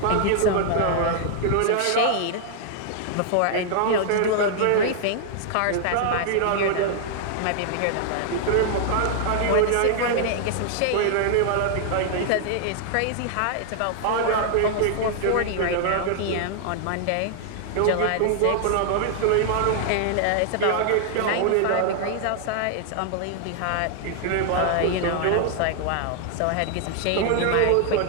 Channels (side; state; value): both; different; correlation 0.00